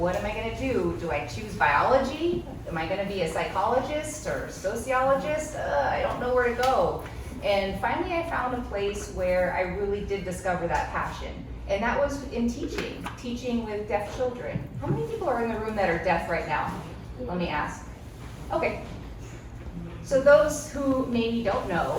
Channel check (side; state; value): both; identical; correlation 1.00